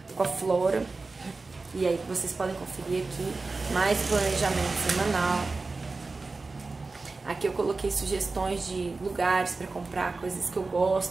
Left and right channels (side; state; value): left; quieter; 3.7 dB